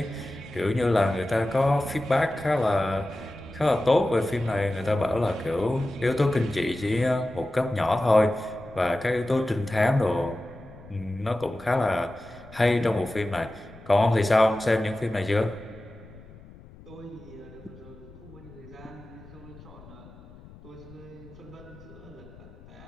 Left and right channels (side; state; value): left; noise; rumble, 20 dB below the sound